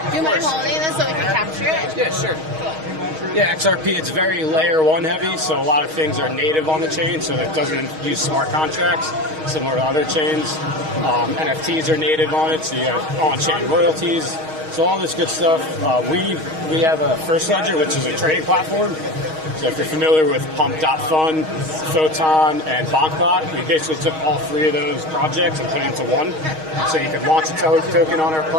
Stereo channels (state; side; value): late; left; 6.4 ms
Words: Do you mind holding this so we can capture it? Yeah, sure. Yeah, XRP, it's very layer one heavy, so a lot of things are native on the chain, so it doesn't use smart contracts, similar to other chains. NFTs are native on it, so you have on-chain royalties. So all this good stuff. We have a First Ledger, which is a trading platform. So if you're familiar with Pump.Fun, Photon, and Bankbot, we basically took all three of those projects and put it into one. So you can launch a token on our